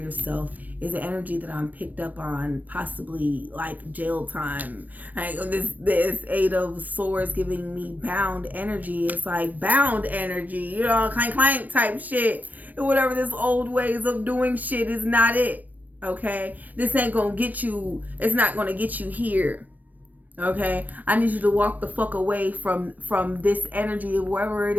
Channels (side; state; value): left; late; 0.083 ms